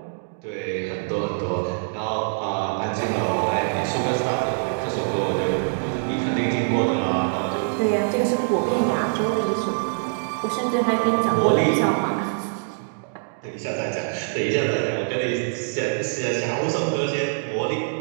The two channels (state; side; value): silent; left; digital silence